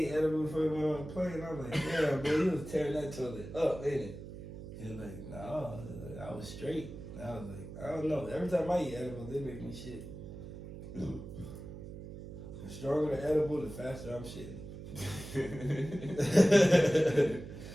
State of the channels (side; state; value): right; noise; hum, 11 dB below the sound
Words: edible before he went on the plane. I was like, damn, bro, you was tearing that toilet up, ain't it? He was like, no, I was straight. And I was like, I don't know. Every time I eat edible, they make me shit. The stronger the edible, the faster I'm shitting.